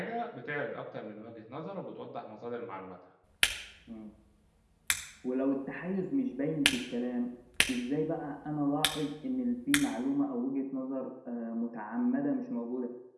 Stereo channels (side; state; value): both; identical; correlation 1.00